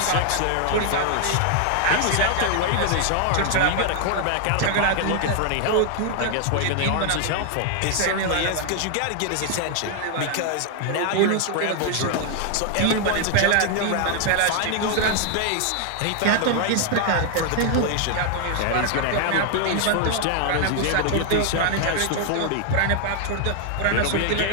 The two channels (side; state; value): both; different; correlation 0.00